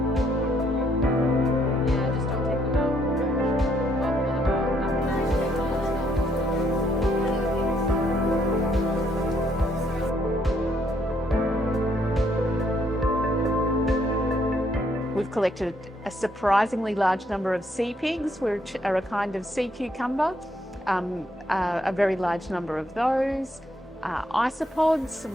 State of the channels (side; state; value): both; normal; correlation 0.71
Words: We've collected a surprisingly large number of sea pigs, which are a kind of sea cucumber, a very large number of those, isopods,